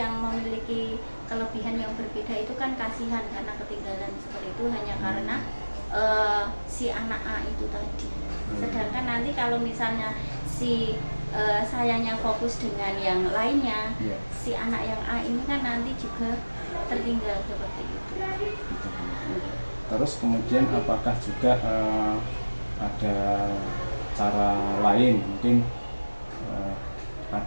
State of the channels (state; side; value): inverted; both; correlation -1.00